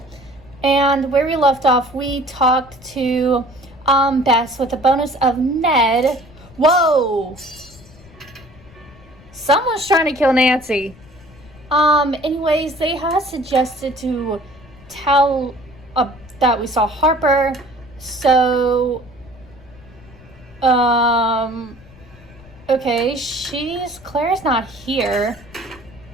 and where we left off, we talked to Bess with a bonus of Ned. Whoa! Someone's trying to kill Nancy. Anyways, they had suggested to tell that we saw Harper, so okay, Claire's not here.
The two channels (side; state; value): left; noise; rumble, 23 dB below the sound